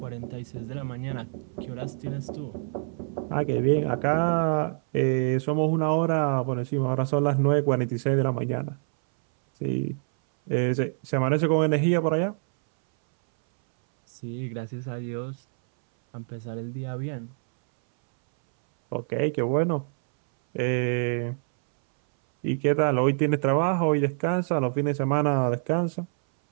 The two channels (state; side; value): silent; left; 60 dB below the other